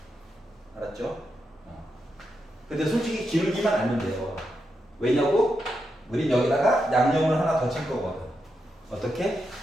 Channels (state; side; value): normal; both; correlation 0.85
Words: 알았죠? 근데 솔직히 기울기만 알면 돼요. 왜냐고? 우린 여기다가 양념을 하나 더 칠 거거든. 어떻게?